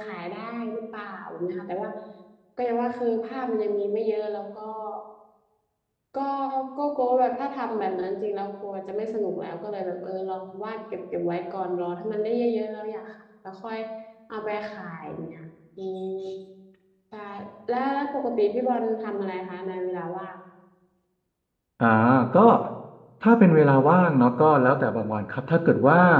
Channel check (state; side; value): identical; both; correlation 1.00